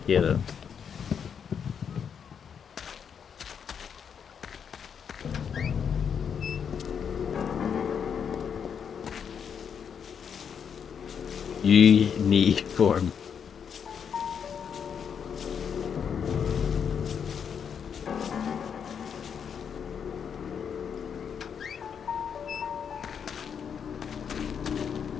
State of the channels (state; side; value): quieter; right; 7.3 dB